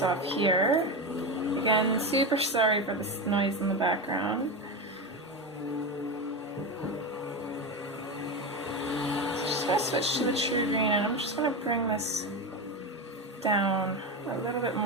off here. Again, super sorry for this noise in the background. I'm going to switch to the true green, and I'm just going to bring this down a little bit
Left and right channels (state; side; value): normal; both; correlation 0.18